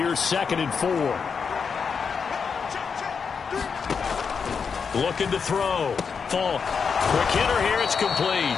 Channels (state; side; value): quieter; right; 5.9 dB